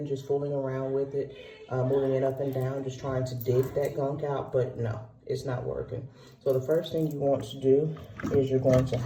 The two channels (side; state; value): both; identical; correlation 1.00